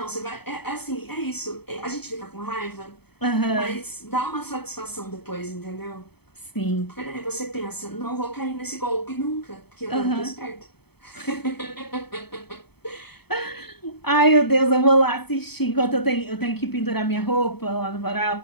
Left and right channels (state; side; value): late; right; 0.97 ms